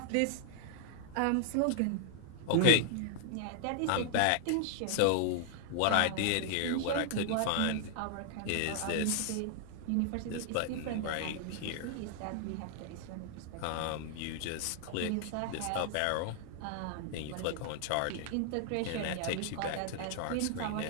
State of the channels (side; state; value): both; different; correlation 0.00